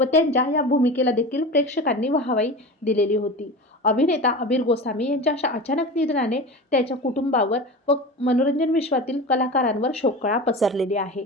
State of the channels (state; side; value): normal; both; correlation 0.30